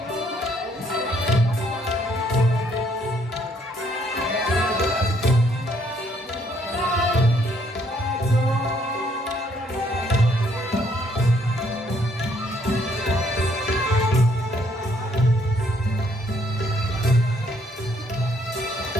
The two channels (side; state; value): both; normal; correlation 0.67